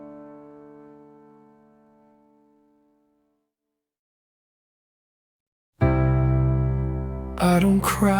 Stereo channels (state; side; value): identical; both; correlation 1.00